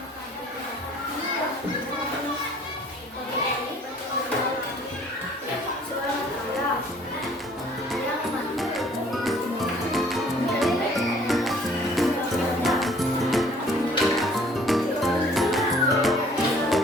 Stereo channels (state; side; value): normal; both; correlation 0.56